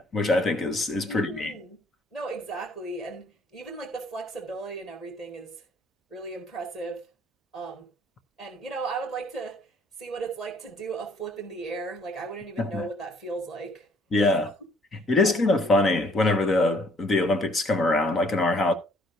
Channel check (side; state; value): both; normal; correlation 0.62